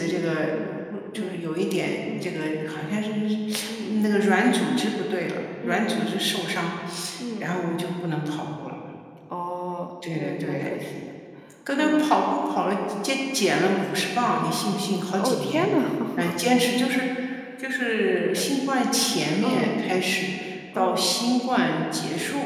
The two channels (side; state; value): both; identical; correlation 1.00